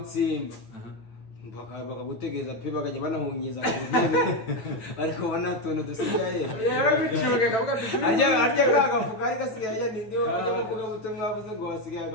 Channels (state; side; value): late; right; 9.0 ms